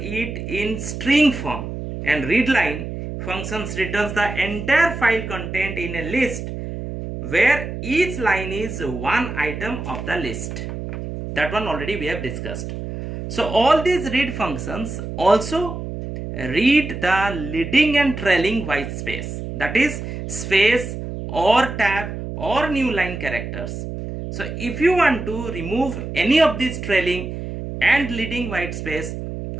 in string form, and readline functions returns the entire file content in a list where each line is one item of the list. That one already we have discussed. So all these read functions also read the leading and trailing white space, that is space or tab or new line characters. So if you want to remove any of these trailing and leading white space,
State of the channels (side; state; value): right; noise; hum, 7 dB below the sound